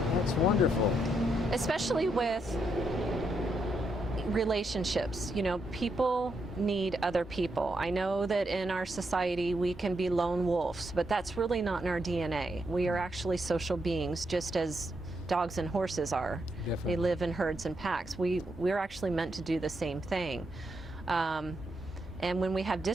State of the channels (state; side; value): normal; both; correlation 0.80